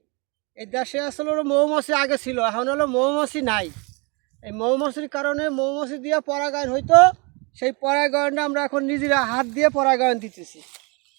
এই দেশে আসলে হলো মৌমাছি আগে ছিল, এখন হলো মৌমাছি নাই। এই মৌমাছির কারণে মৌমাছি দিয়ে পরাগায়ন হইতো, সেই পরাগায়নটা আমরা এখন নিজেরা হাত দিয়ে পরাগায়ন দিতেছি।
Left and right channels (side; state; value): left; quieter; 30.4 dB